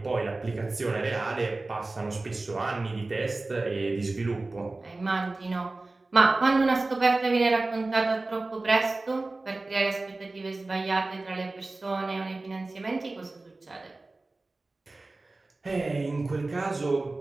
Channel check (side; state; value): left; quieter; 3.2 dB